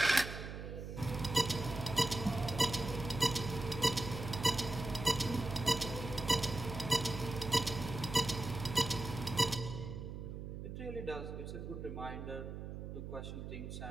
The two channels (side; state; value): right; noise; hum, 8 dB below the sound